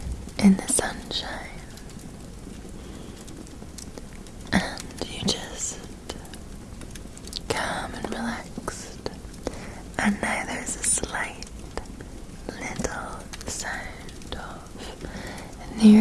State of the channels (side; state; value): both; identical; correlation 1.00